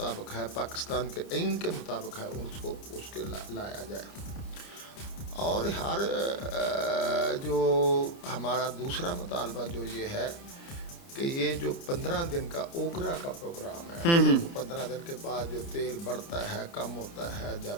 है, पाकिस्तान के आइन के मुताबिक है, उसको उसके लाया जाए। और हर जो हमारा दूसरा मुतालबा जो ये है कि ये जो 15 दिन का ओगरा का प्रोग्राम है, वो 15 दिन के बाद जो तेल बढ़ता है, कम होता है,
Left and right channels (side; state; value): right; late; 29 ms